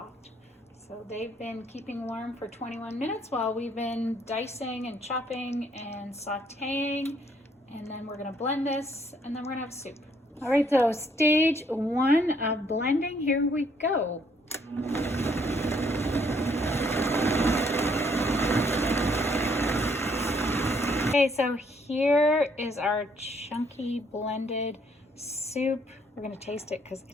So they've been keeping warm for 21 minutes while we've been dicing and chopping and sauteing. And then we're gonna blend this and then we're gonna have soup. All right, so stage 1 of blending, here we go. Okay, so here is our chunky blended soup. We're gonna taste it because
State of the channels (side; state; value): both; normal; correlation 0.67